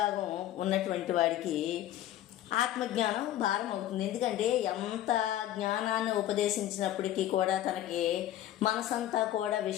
ఉన్నటువంటి వాడికి ఆత్మజ్ఞానం భారం అవుతుంది. ఎందుకంటే ఎంత జ్ఞానాన్ని ఉపదేశించినప్పటికీ కూడా తనకి మనసంతా కూడా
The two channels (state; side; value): quieter; right; 12.8 dB